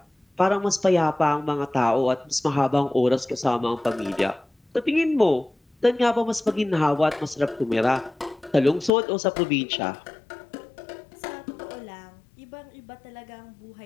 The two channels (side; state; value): right; drops out; at 8.9 s